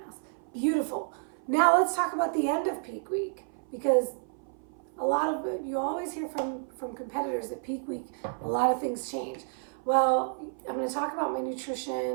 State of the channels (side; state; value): left; silent; 56 dB below the other